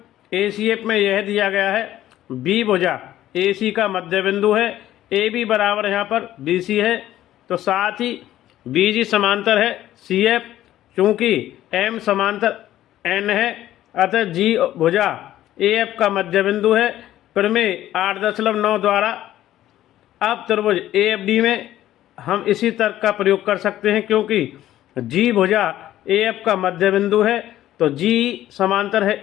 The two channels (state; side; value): quieter; right; 13.3 dB